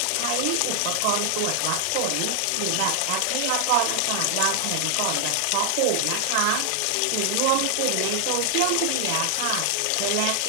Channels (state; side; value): different; both; correlation 0.00